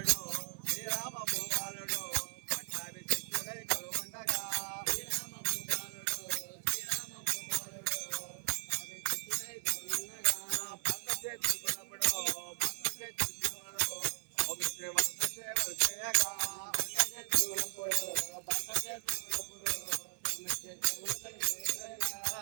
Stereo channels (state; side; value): silent; left; 53 dB below the other